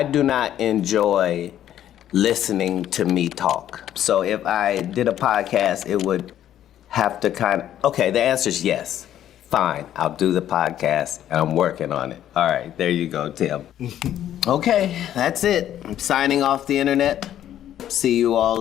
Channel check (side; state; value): right; quieter; 11.4 dB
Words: do not enjoy listening to me talk. So if I did a podcast, it would have to okay, the answer is yes. Fine, I'll do the podcast, and I'm working on it. All right, there you go, Tim. Okay, that's it. I'm signing off the internet. See you all